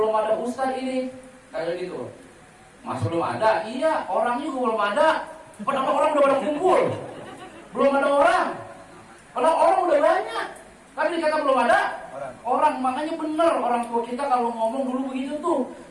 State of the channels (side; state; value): both; identical; correlation 1.00